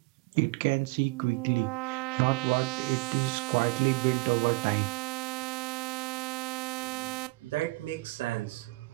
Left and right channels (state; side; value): quieter; left; 25.3 dB